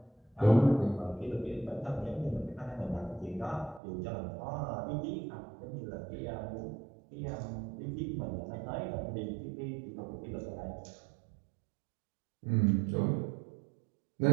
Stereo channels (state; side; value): drops out; left; at 3.8 s